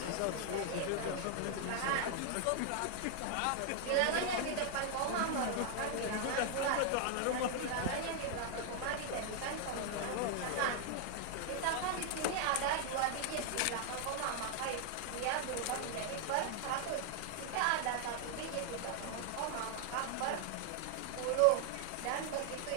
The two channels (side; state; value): both; different; correlation 0.00